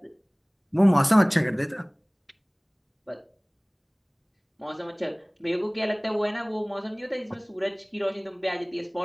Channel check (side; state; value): both; identical; correlation 1.00